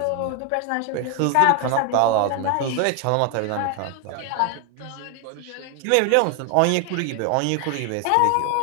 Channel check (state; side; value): different; both; correlation 0.00